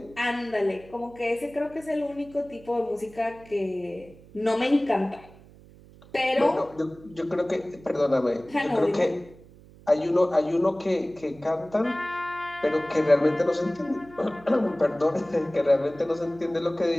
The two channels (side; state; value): right; noise; hum, 23 dB below the sound